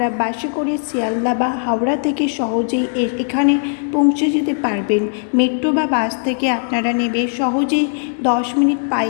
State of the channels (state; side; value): silent; right; 62 dB below the other